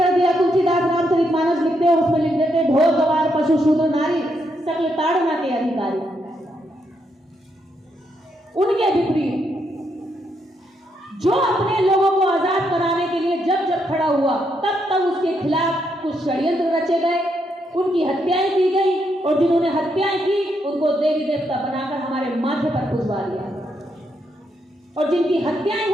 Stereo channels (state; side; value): normal; both; correlation 0.78